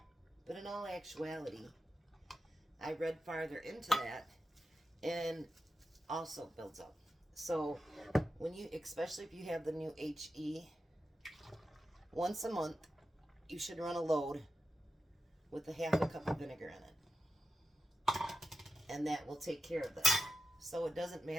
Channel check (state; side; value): normal; both; correlation 0.90